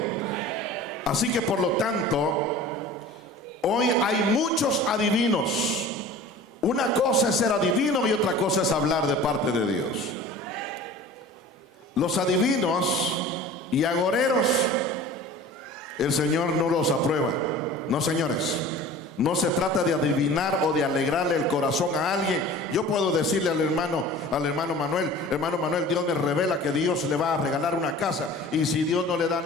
Así que por lo tanto, hoy hay muchos adivinos. Una cosa es ser adivino y otra cosa es hablar de parte de Dios. Los adivinos y agoreros, el Señor no los aprueba. No, señores. No se trata de adivinar o de alegrarle el corazón a alguien. Yo puedo decirle al hermano Manuel: hermano Manuel, Dios me revela que Dios le va a regalar una casa, y si Dios no le da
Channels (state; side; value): normal; both; correlation 0.41